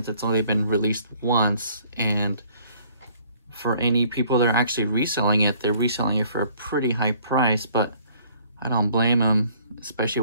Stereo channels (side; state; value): both; inverted; correlation -0.59